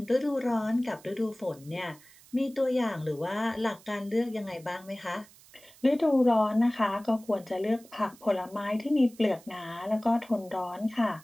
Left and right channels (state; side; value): noise; right; hiss, 24 dB below the sound